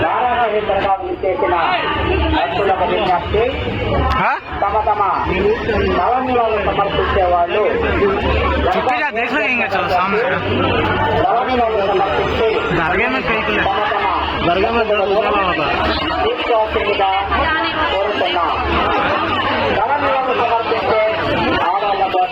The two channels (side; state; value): both; identical; correlation 1.00